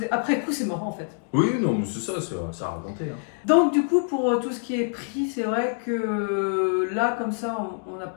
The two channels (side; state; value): right; silent; 56 dB below the other